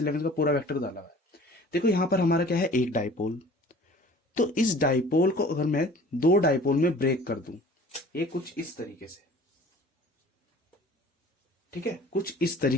का पूरा वेक्टर डाला हुआ है। देखो यहां पर हमारा क्या है, एक डाइपोल। तो इस डाइपोल को अगर मैं दो डाइपोल में ब्रेक कर दूं, ये कुछ इस तरीके से, ठीक है, कुछ इस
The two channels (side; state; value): both; normal; correlation 0.47